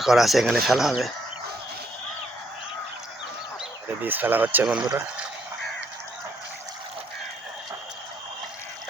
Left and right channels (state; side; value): normal; both; correlation 0.70